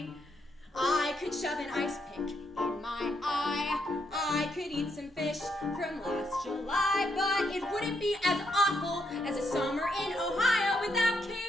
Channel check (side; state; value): both; normal; correlation 0.78